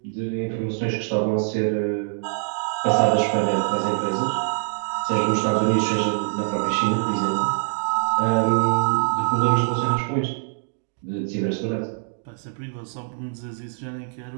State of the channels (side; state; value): left; silent; digital silence